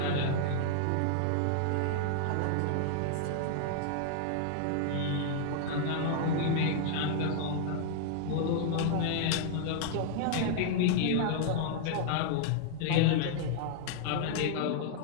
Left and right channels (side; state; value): both; different; correlation -0.01